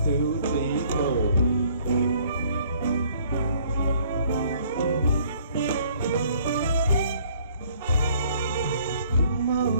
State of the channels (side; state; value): both; inverted; correlation -0.60